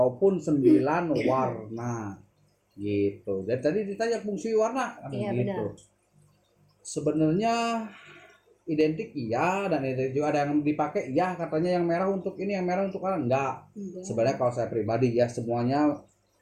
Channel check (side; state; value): both; identical; correlation 1.00